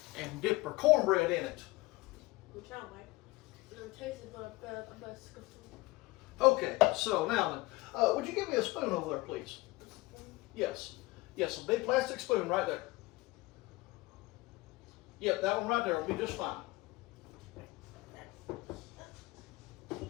and dip their cornbread in it. Which I don't like. It tastes but I bet it's disgusting. Okay, so now then, would you give me a spoon over there, please? Yes, a big plastic spoon right there. Yep, that one right there will be just fine.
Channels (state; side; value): quieter; right; 21.6 dB